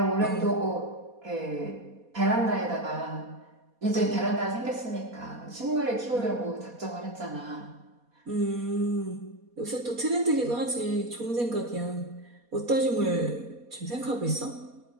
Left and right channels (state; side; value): late; left; 4.2 ms